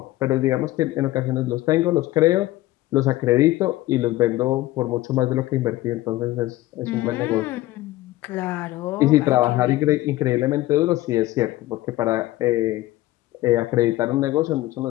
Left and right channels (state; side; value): quieter; right; 16.9 dB